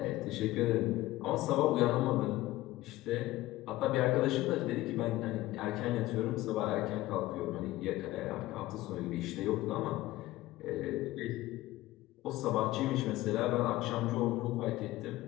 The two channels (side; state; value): right; quieter; 17.1 dB